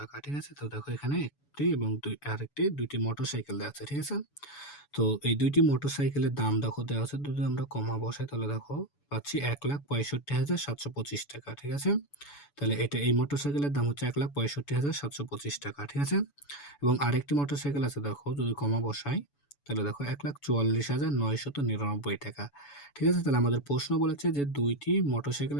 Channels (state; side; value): late; right; 7.0 ms